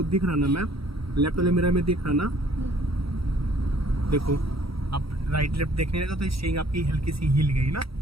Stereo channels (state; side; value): late; left; 0.75 ms